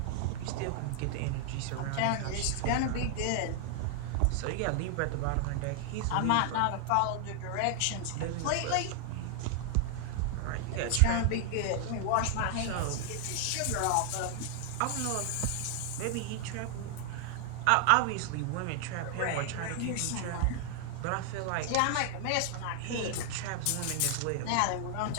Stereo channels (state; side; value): different; both; correlation 0.00